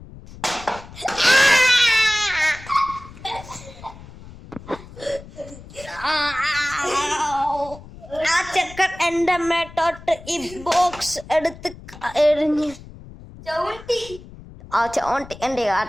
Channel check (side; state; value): left; noise; rumble, 17 dB below the sound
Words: ആ ചെക്കൻ എന്റെ മേട്ടോട്ട് ഈ ബോക്സ് എടുത്ത് എറിഞ്ഞ് ചോണ്ടി എന്റെ